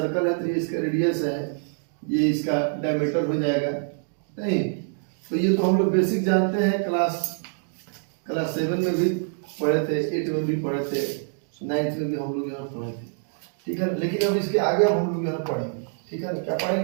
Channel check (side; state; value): left; silent; digital silence